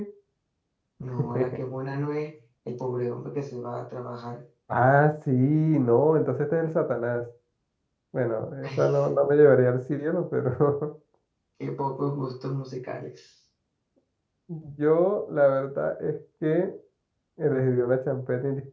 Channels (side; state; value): both; identical; correlation 1.00